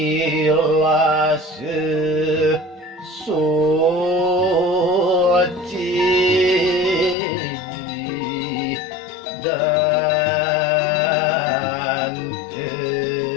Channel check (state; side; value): drops out; right; at 7.2 s